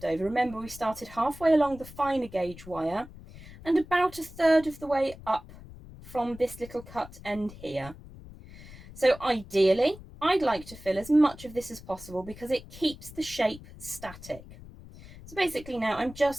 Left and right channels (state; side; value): noise; left; rumble, 17 dB below the sound